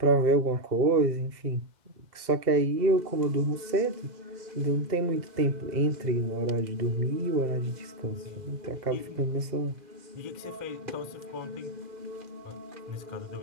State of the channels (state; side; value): late; left; 2.0 ms